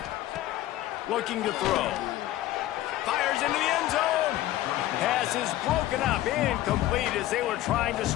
Looking to throw. Fires into the end zone. Pass is broken up, incomplete as they were trying to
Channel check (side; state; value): right; quieter; 14.6 dB